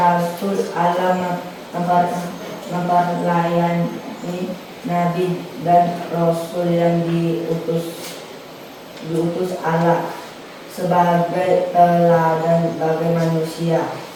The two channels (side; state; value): both; identical; correlation 1.00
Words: Allah memperlayani Nabi dan Rasul yang diutus Allah sebagai teladan bagi manusia.